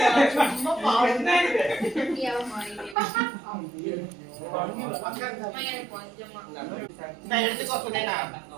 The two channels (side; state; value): left; drops out; at 3.0 s